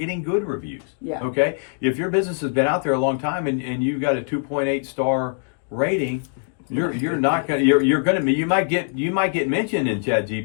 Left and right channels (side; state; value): right; silent; digital silence